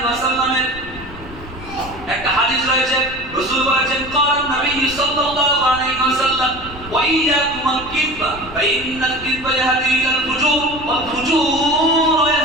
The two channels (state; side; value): noise; left; rumble, 16 dB below the sound